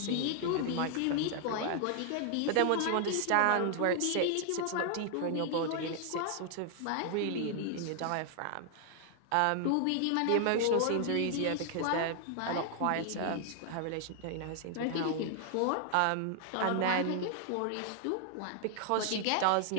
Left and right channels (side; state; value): both; different; correlation 0.00